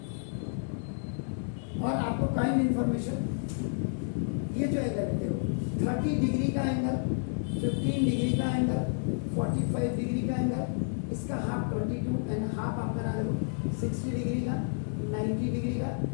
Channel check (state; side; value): silent; right; digital silence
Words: और आपको काइंड इंफॉर्मेशन, ये जो एंगल है देखो, 30 डिग्री का एंगल, 15 डिग्री का एंगल, 45 डिग्री का एंगल, इसका हाफ 22 एंड हाफ आप बना दो 60 डिग्री का, 90 डिग्री का,